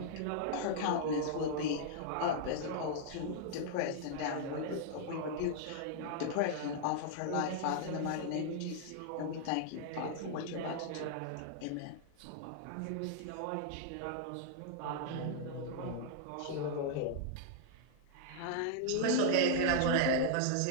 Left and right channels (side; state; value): both; different; correlation -0.01